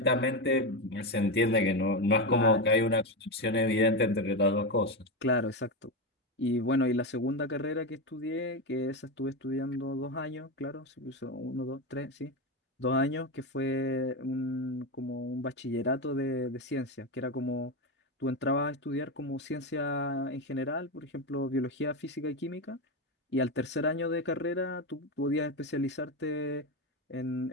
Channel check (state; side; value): normal; both; correlation 0.13